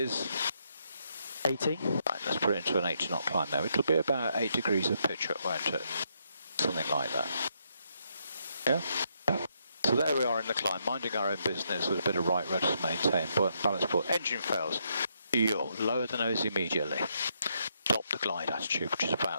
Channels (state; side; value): inverted; both; correlation -0.76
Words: 80. right, let's put it into an 80 knot climb now. It'll be about 8 degrees of pitch up, won't it? Something like that. Yeah? So there we are in the climb, minding our own business with a bit of right rudder to maintain, buoyant balance port. Engine fails. You'll lower the nose immediately. Stop the glide attitude, which is